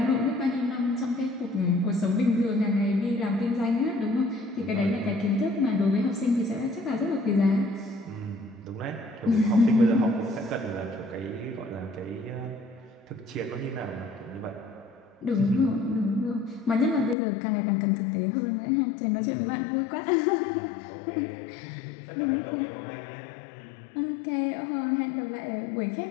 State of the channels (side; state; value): right; drops out; at 17.2 s